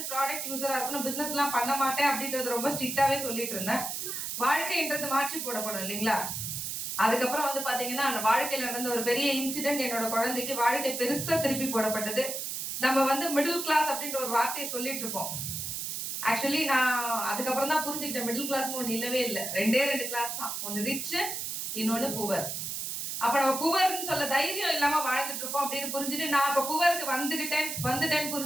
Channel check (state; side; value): noise; right; hiss, 4 dB below the sound